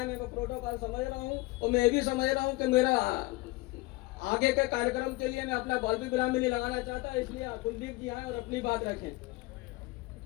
मैं प्रोटोकॉल समझ रहा हूं और मैं ये भी समझ रहा हूं कि मेरा आगे के कार्यक्रम के लिए मैं अपना बाल भी विराम भी नहीं लगाना चाहता, इसलिए कुलदीप जी आए और अपनी बात रखें।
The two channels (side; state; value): right; quieter; 21.7 dB